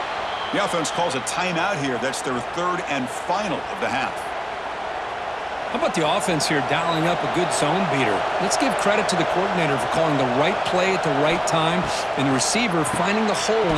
The offense calls a timeout here. That's their 3rd and final of the half. How about the offense here dialing up a good zone beater? Let's give credit to the coordinator for calling the right play at the right time and the receiver finding the hole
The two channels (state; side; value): identical; both; correlation 1.00